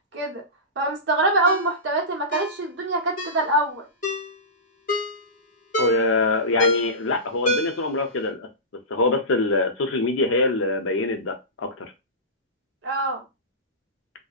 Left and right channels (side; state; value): both; normal; correlation -0.20